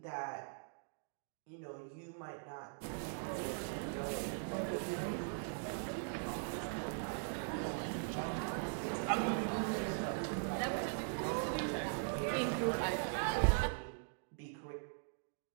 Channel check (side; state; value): left; silent; digital silence